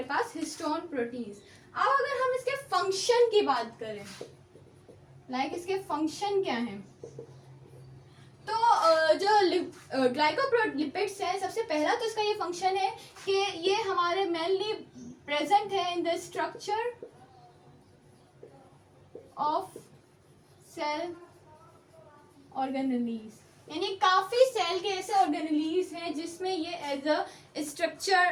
पास हिस्टोन प्रोटीन्स। अब अगर हम इसके फंक्शन की बात करें, लाइक इसके फंक्शन क्या है, तो जो ग्लाइकोलिपिड्स हैं, सबसे पहला तो इसका ये फंक्शन है कि ये हमारे मेनली प्रेजेंट है in the structure of cell organelles, यानी काफ़ी सेल के ऐसे ऑर्गेनेलीज हैं जिसमें ये एज अ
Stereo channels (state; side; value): identical; both; correlation 1.00